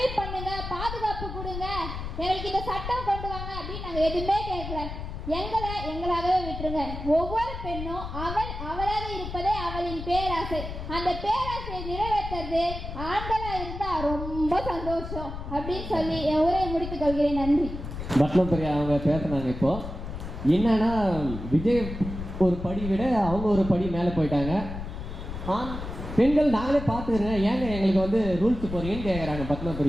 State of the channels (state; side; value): noise; left; rumble, 8 dB below the sound